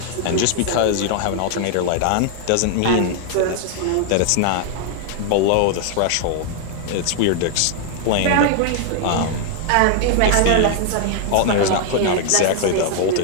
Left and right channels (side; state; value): both; different; correlation 0.00